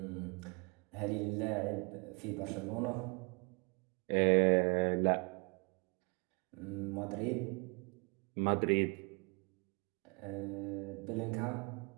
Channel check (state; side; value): quieter; left; 32.8 dB